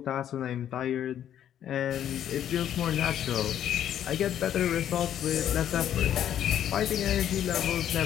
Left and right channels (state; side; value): quieter; right; 10.4 dB